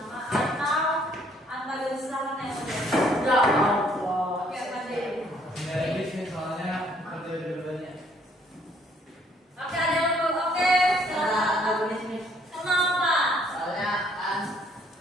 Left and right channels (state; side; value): normal; both; correlation 0.64